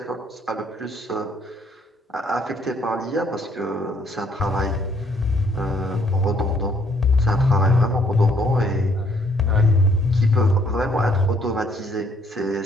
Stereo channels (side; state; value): both; normal; correlation 0.66